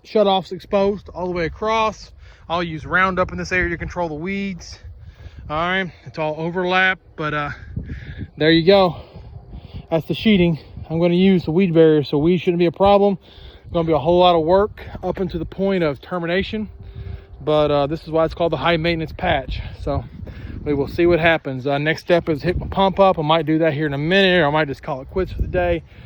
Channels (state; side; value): identical; both; correlation 1.00